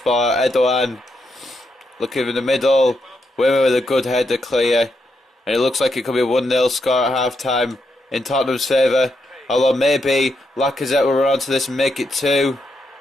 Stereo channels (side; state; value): both; normal; correlation 0.81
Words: Erdogan looking in the middle. Wimmer with a good header clear. And it looks like it could be a 1-0 score at half time in Tottenham's favour. Although maybe Lacazette will run onto this and make it 2.